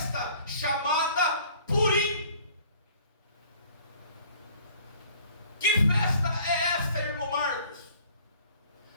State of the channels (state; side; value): inverted; both; correlation -0.53